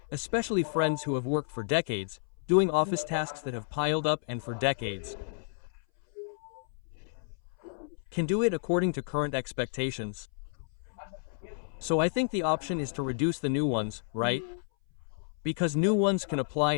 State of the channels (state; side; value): silent; right; 57 dB below the other